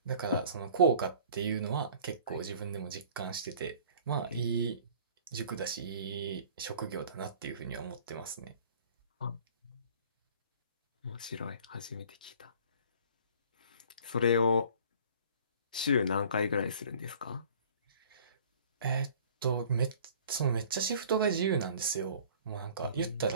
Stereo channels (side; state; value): both; inverted; correlation -0.50